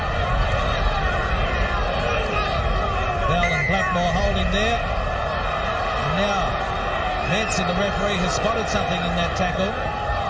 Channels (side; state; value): both; identical; correlation 1.00